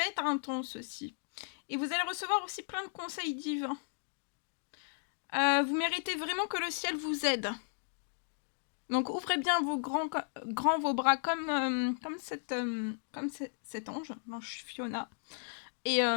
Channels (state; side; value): silent; right; digital silence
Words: être intense aussi. Et vous allez recevoir aussi plein de conseils divins. Vous méritez vraiment que le ciel vous aide. Donc ouvrez bien vos grands vos bras comme cet ange, l'ange Fiona. Et